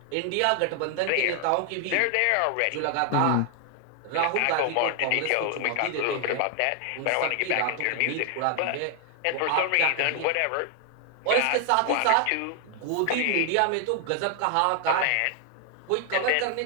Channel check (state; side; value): different; both; correlation 0.00